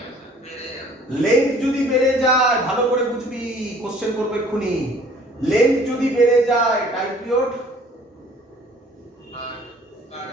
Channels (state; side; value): normal; both; correlation 0.54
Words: লেন্থ যদি বেড়ে যায়, ভালো করে বুঝবি, কোশ্চেন করবে এক্ষুনি, লেন্থ যদি বেড়ে যায় টাইম পিরিয়ড